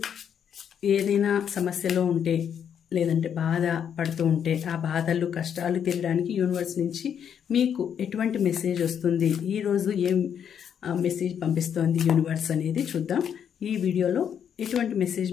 ఏదైనా సమస్యలో ఉంటే లేదంటే బాధ పడుతూ ఉంటే ఆ బాధలు కష్టాలు తీరడానికి యూనివర్స్ నుంచి మీకు ఎటువంటి మెసేజ్ వస్తుంది, ఈరోజు ఏం మెసేజ్ పంపిస్తోంది యూనివర్స్ అనేది చూద్దాం. ఈ వీడియోలో ఎటువంటి మెసేజ్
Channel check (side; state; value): right; quieter; 8.3 dB